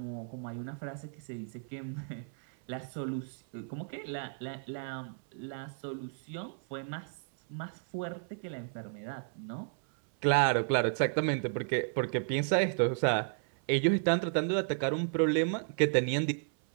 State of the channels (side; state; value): left; silent; 56 dB below the other